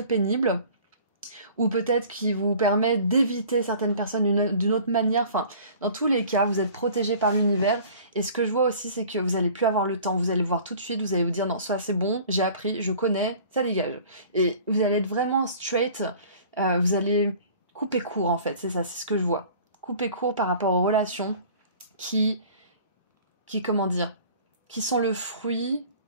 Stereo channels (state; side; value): inverted; both; correlation -0.47